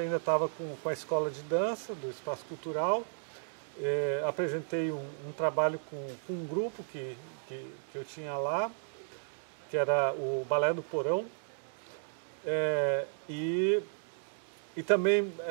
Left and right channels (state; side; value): silent; left; digital silence